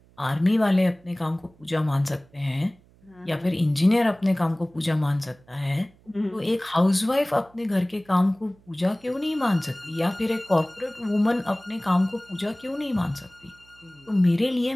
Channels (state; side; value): noise; right; hum, 29 dB below the sound